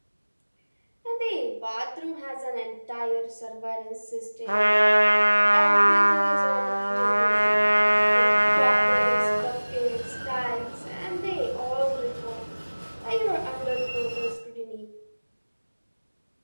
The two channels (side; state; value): both; inverted; correlation -1.00